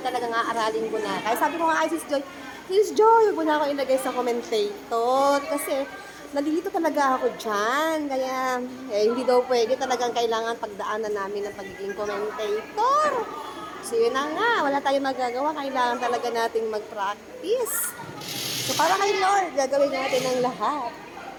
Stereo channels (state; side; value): identical; both; correlation 1.00